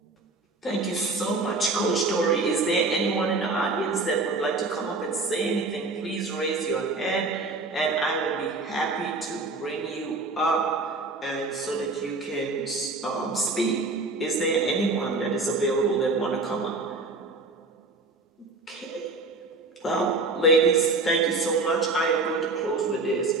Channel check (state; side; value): quieter; left; 3.4 dB